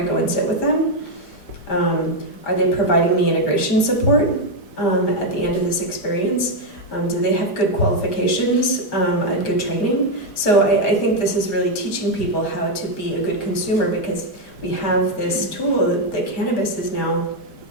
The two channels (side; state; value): right; late; 4.8 ms